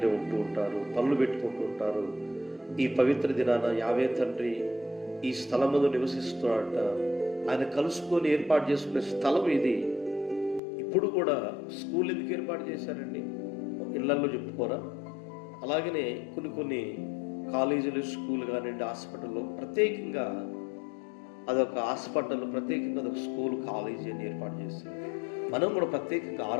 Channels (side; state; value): right; drops out; at 10.6 s